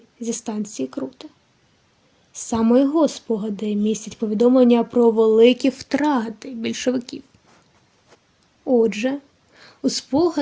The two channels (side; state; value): both; identical; correlation 1.00